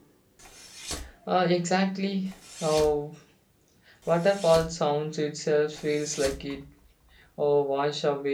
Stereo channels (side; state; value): both; identical; correlation 1.00